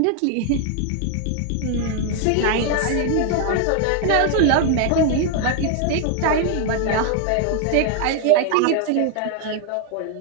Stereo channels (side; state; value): both; different; correlation 0.00